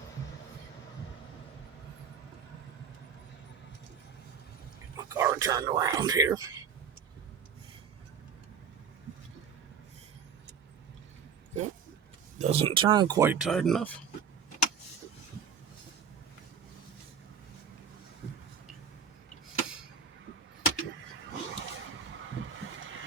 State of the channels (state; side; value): quieter; left; 6.7 dB